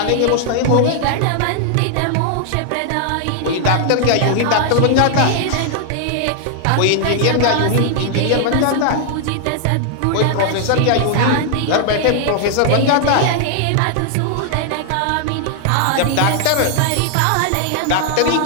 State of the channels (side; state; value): both; different; correlation 0.00